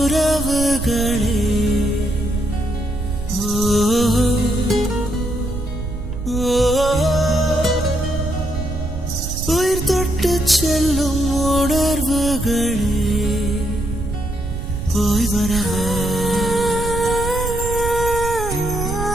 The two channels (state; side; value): noise; right; rumble, 5 dB below the sound